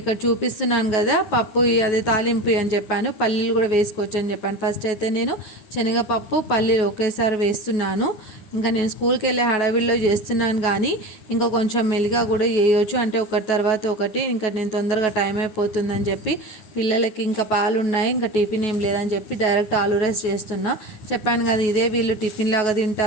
చూపిస్తున్నాను కదా పప్పు, అదే తాలింపు అని చెప్పాను, పల్లీలు కూడా వేసుకోవచ్చు అని చెప్పాను. ఫస్ట్ అయితే నేను శనగపప్పు, పల్లీలు ఒకేసారి వేస్తున్నాను. ఇంకా నేను స్కూల్కి వెళ్ళే హడావిడిలో చేస్తున్నాను, కానీ ఇంకా కొంచెం మెల్లిగా కూడా వేయవచ్చు, అంటే ఒకటి తర్వాత ఒకటి. ఇంకా నేను తొందరగా టైం అయిపోతుందని చెప్పి పిల్లలకి ఇంకా పాలు ఉన్నాయి, ఇంకా టిఫిన్ ఏం లేదని చెప్పి డైరెక్ట్ ఆలు రైస్ చేస్తున్నా. చెప్పాను కదా, ఇదే వీళ్ళు టిఫిన్ లాగా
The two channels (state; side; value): late; right; 9.3 ms